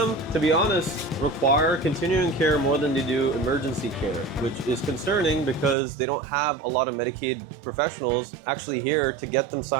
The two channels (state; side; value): drops out; left; at 5.8 s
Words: to be honest, require continuing care more than they do emergency care, which is concerning because they don't have a lot of Medicaid professionals actually here to get them